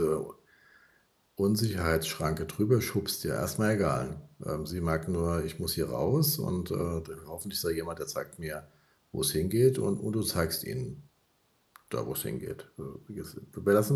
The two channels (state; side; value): identical; both; correlation 1.00